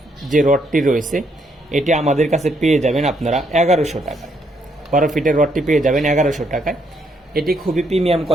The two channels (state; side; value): normal; both; correlation 0.73